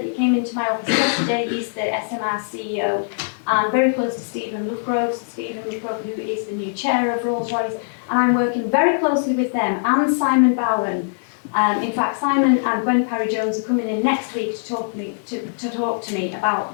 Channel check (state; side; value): silent; right; digital silence